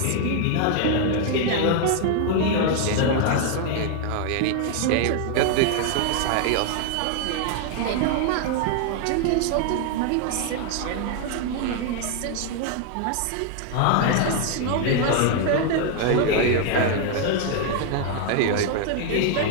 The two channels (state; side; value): different; both; correlation 0.00